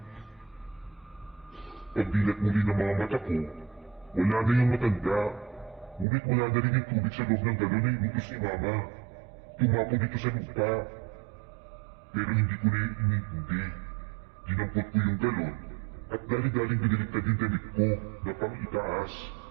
Pagdilat muli ng mga mata ko, wala na yung matanda. Ngunit wala na rin yung tubig sa loob ng galon na inutos ni Mama. Tumapo dito sa lupa. Pero hindi ko na inintindi. Dinampot ko yung galon at dali-daling biniliktad yung damit ko na pang-itaas.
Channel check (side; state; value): left; drops out; at 6.1 s